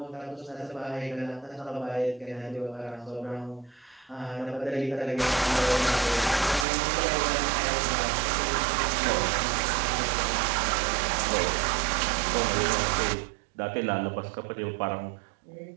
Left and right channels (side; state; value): left; drops out; at 6.7 s